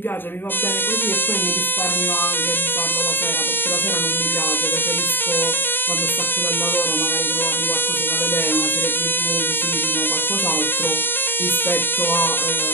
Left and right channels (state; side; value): late; right; 0.098 ms